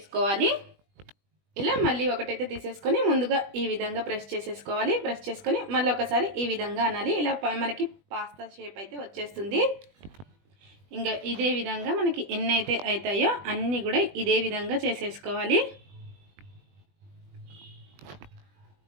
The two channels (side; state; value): left; late; 20 ms